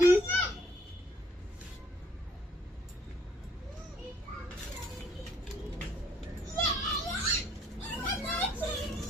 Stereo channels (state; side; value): normal; both; correlation 0.63